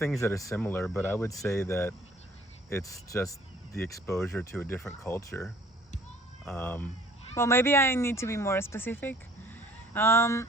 that are similar, but I would say that it's just the exposure to a different culture. Um, Well, maybe I need to be more specific.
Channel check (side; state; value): both; normal; correlation 0.55